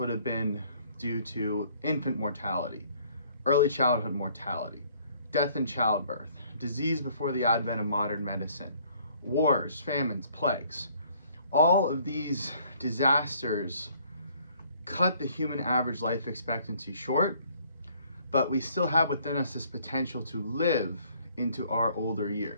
have been due to infant mortality, early childhood mortality, death in childbirth, disease before the advent of modern medicine, wars, famines, plagues. All of these disasters cut the human average life expectancy short, but we still have within us this potential to live into our older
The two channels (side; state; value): both; inverted; correlation -0.60